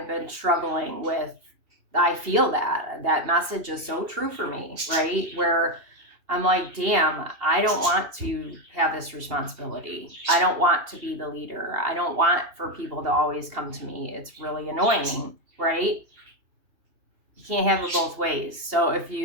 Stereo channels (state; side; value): late; left; 2.8 ms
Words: been struggling with, I feel that message is so true for me, right? Where I'm like, damn, I don't want to have this responsibility. I don't want to be the leader. I don't want for people to always come to me. It's really annoying, right? You can't have it both ways. So if